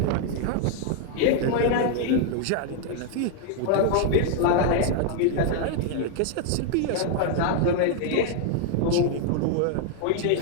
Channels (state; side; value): different; both; correlation 0.00